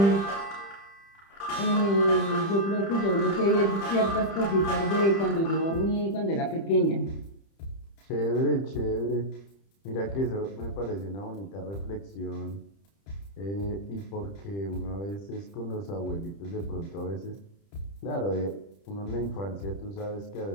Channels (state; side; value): late; right; 30 ms